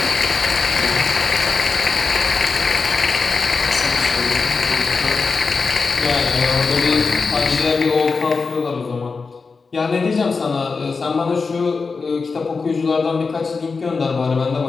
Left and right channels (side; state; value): right; quieter; 4.6 dB